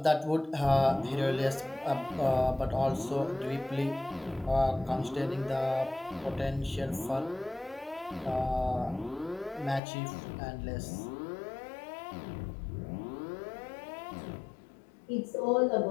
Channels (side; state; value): right; drops out; at 9.8 s